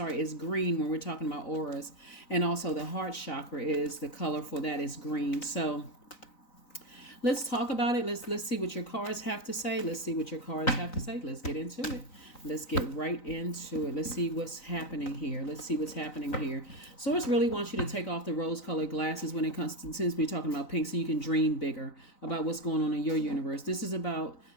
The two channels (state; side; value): late; right; 3.9 ms